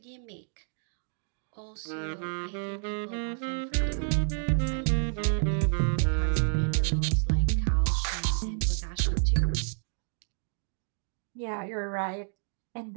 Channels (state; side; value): silent; left; 58 dB below the other